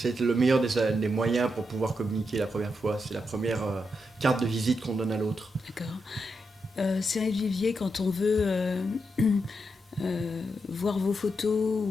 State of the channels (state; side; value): normal; both; correlation 0.84